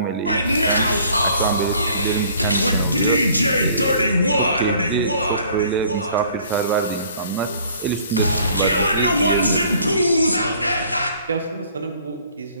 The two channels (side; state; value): both; inverted; correlation -0.56